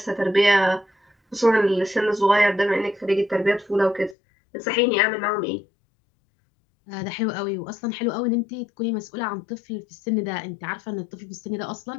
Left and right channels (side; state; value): right; drops out; at 4.2 s